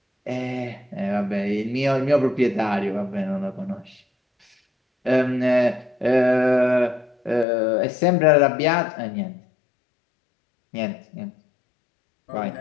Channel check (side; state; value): right; drops out; at 7.5 s